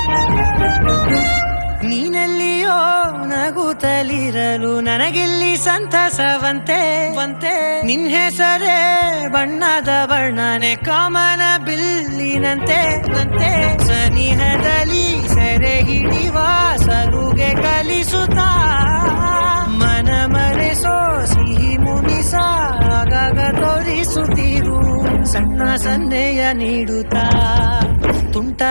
ನೀನೆಲ್ಲಿಯೋ ನಗುತ್ತಲಿರಲು ನನಗೆಲ್ಲಿ ಸಂತಸವಂತೆ ನಿನ್ ಹೆಸರೇ ಬಣ್ಣದ ವರ್ಣನೆ ಕಾಮನ ಬಿಲ್ಲಿನಂತೆ ಸನಿಹದಲ್ಲಿ ಸೆರೆ ಹಿಡಿವ ಸಲುಗೆ ಕಲಿಸುತ್ತಾ ಮನ ಮರೆಸೋ ಸಿಹಿ ಮುನಿಸ ಆಗಾಗ ತೋರಿಸುತ್ತೀರು ಸಣ್ಣ ಸನ್ನೆಯ ನೀಡುತ್ತಾ ತುಂಟ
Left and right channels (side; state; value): both; inverted; correlation -1.00